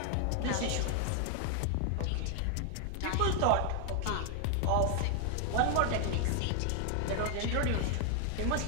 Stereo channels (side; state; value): both; different; correlation 0.00